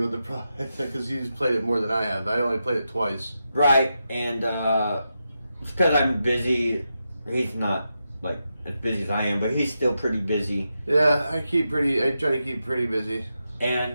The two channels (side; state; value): both; inverted; correlation -0.88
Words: of the product because he's played it more than I have. I only played it twice. Right, and it's because I'm busy. He's not, like, as busy as I am, but he's still pretty busy. Yeah, I try to keep pretty busy.